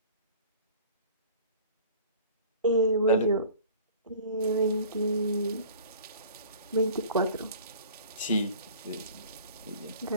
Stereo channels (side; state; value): both; inverted; correlation -0.46